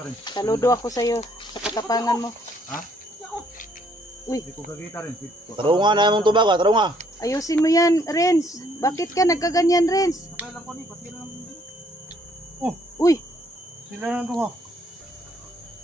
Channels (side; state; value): both; normal; correlation 0.66